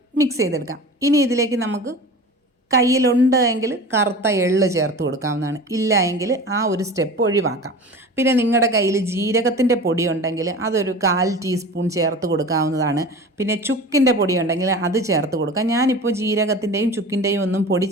മിക്സ് ചെയ്തെടുക്കാം. ഇനി ഇതിലേക്ക് നമുക്ക് കയ്യിലുണ്ട് എങ്കിൽ കറുത്ത എള്ള് ചേർത്ത് കൊടുക്കാവുന്നതാണ്. ഇല്ല എങ്കിൽ ആ ഒരു സ്റ്റെപ്പ് ഒഴിവാക്കാം. പിന്നെ നിങ്ങളുടെ കയ്യിൽ ജീരകത്തിൻ്റെ പൊടി ഉണ്ടെങ്കിൽ അതൊരു 1/4 ടീസ്പൂൺ ചേർത്ത് കൊടുക്കാവുന്നതാണ്. പിന്നെ ചുക്കിൻ്റെ പൊടി ഉണ്ടെങ്കിൽ അത് ചേർത്ത് കൊടുക്കാം. ഞാനിപ്പോൾ ജീരകത്തിൻ്റെയും ചുക്കിൻ്റെയും ഒന്നും പൊടി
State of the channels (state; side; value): normal; both; correlation 0.35